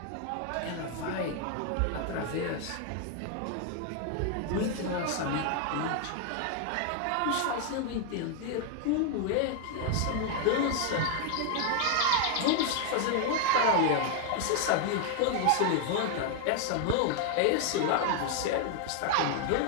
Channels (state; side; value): different; both; correlation 0.00